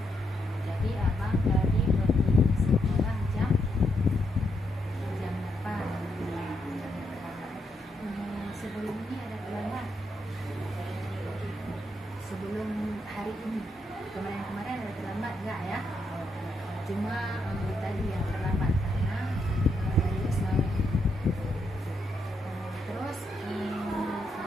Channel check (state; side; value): normal; both; correlation 0.79